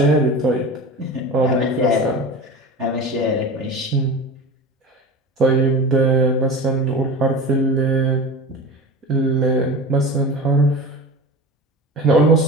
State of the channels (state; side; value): normal; both; correlation 0.31